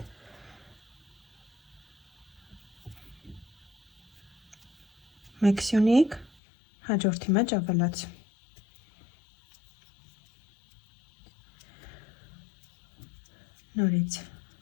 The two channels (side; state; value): right; drops out; at 6.3 s